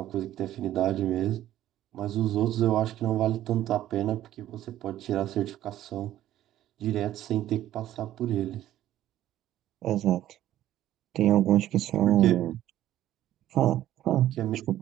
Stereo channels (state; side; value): quieter; left; 13.1 dB